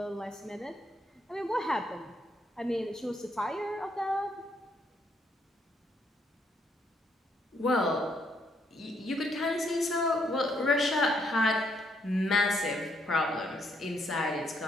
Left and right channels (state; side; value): normal; both; correlation 0.72